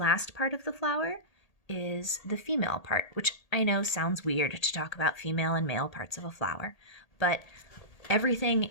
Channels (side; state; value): right; late; 1.8 ms